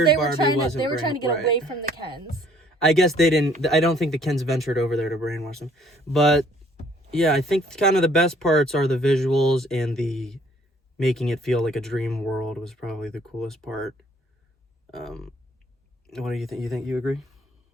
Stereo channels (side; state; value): both; normal; correlation 0.60